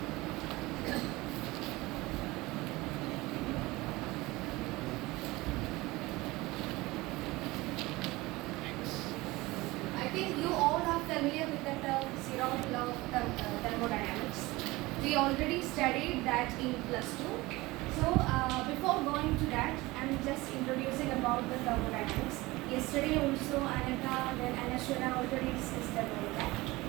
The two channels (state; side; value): quieter; left; 20.8 dB